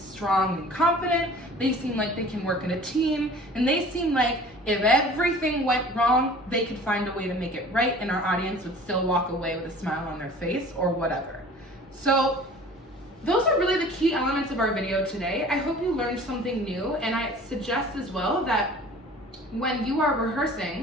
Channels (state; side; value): normal; both; correlation 0.45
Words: and confident. They seem like they can work in a team. And they seem like if everything went wrong, they could find a way to make it right and our audience would still walk away with a smile on their face or whatever. So those are really the key elements of our video today. I hope you learned something new, and I suggest as well that when you are